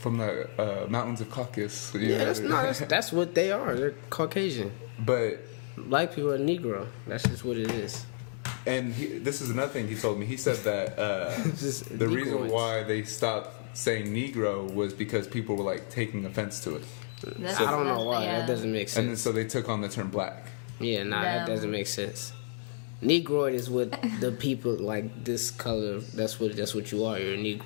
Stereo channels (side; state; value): right; silent; digital silence